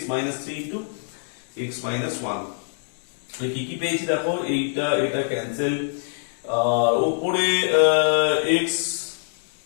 minus 3 into x minus 1। কি কি পেয়েছি দেখো, এইটা এটা ক্যান্সেল, আর উপরে x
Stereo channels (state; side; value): silent; right; digital silence